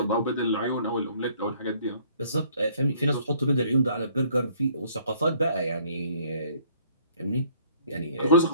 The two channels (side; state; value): both; inverted; correlation -0.60